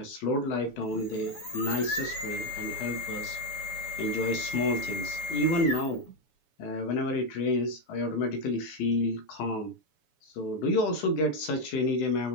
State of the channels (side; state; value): right; late; 7.1 ms